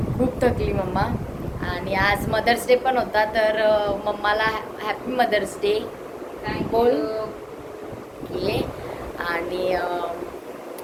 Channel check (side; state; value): both; identical; correlation 1.00